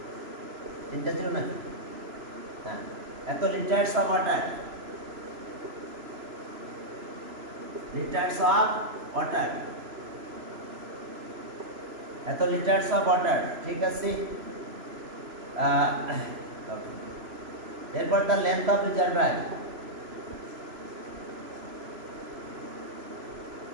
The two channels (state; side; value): late; left; 3.0 ms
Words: তিনটা ছিল নাকি? হ্যাঁ, এত litres of water. Litres of water, এত লিটার্স অফ ওয়াটার, ঠিক আছে। এরপর the length of reservoir,